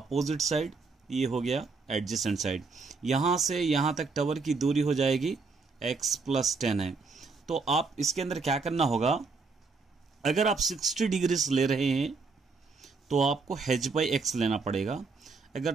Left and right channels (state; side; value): quieter; left; 4.3 dB